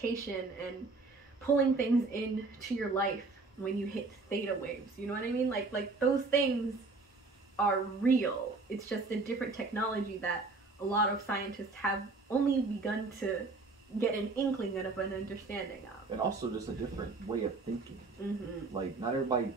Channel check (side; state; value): left; quieter; 3.7 dB